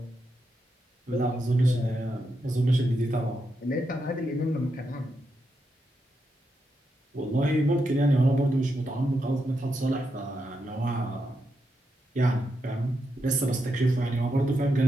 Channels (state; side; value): normal; both; correlation 0.84